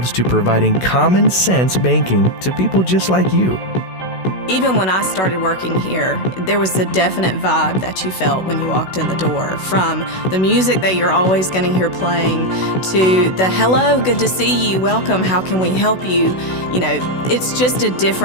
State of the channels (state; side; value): late; right; 16 ms